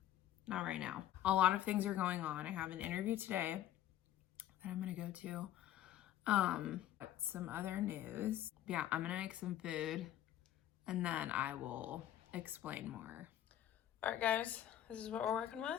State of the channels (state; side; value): quieter; right; 12.0 dB